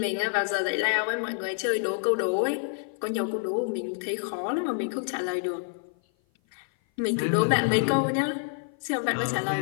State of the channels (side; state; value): right; silent; 56 dB below the other